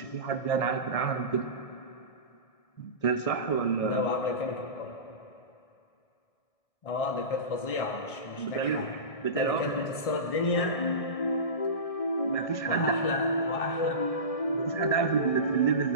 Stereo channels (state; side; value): late; right; 1.6 ms